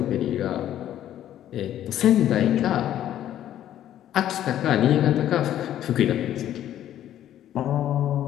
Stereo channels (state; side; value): quieter; right; 11.7 dB